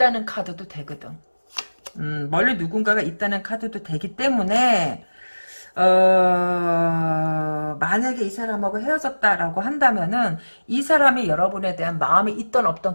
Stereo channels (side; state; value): both; inverted; correlation -1.00